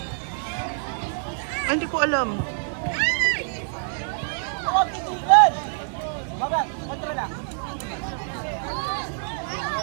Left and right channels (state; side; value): silent; left; 61 dB below the other